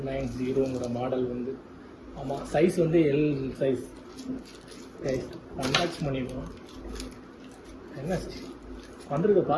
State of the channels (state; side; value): identical; both; correlation 1.00